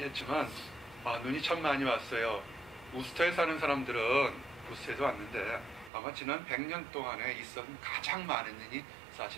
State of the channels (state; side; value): drops out; left; at 5.9 s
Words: 눈이 참 많이 왔어요. 우스터에 사는 사람들은 우스터에서 왔는데 아마 지난 100년 동안에 있었던 가장 많은 눈이